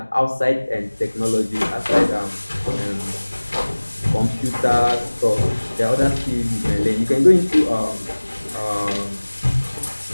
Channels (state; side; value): inverted; both; correlation -1.00